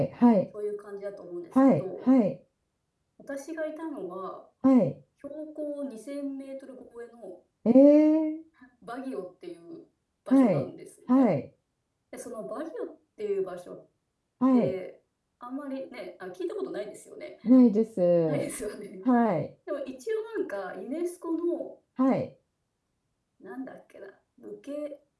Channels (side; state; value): both; identical; correlation 1.00